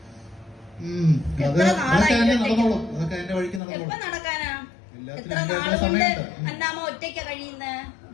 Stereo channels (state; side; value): drops out; right; at 3.6 s